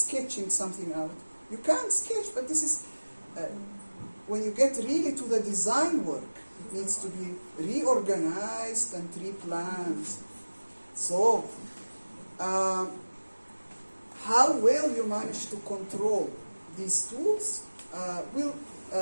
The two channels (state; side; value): inverted; both; correlation -1.00